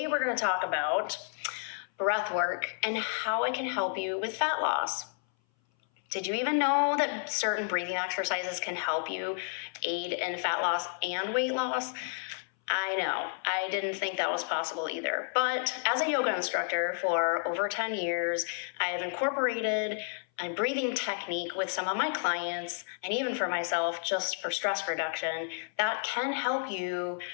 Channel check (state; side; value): silent; right; 57 dB below the other